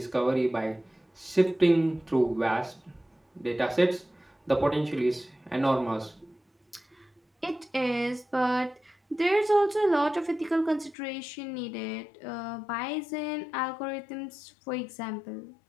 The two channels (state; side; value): drops out; right; at 11.0 s